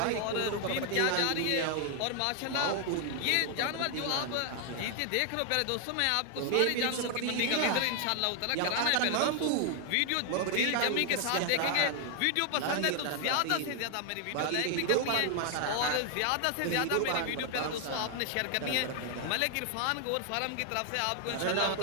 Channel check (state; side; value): different; both; correlation 0.00